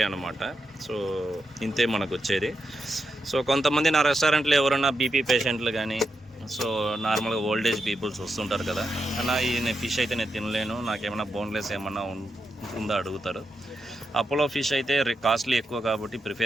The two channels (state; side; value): normal; both; correlation 0.85